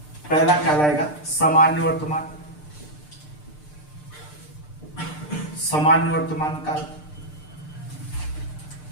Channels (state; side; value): late; right; 6.7 ms